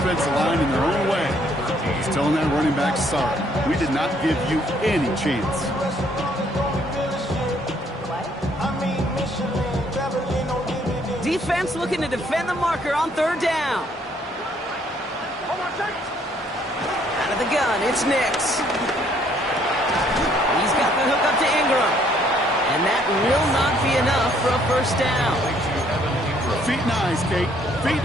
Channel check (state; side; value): normal; both; correlation 0.65